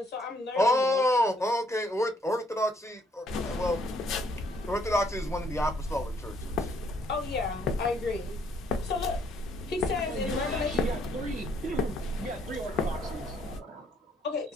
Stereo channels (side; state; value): both; normal; correlation 0.68